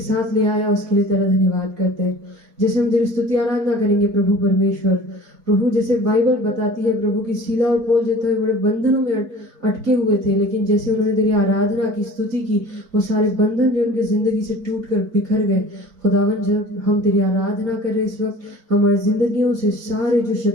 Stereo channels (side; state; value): left; late; 4.5 ms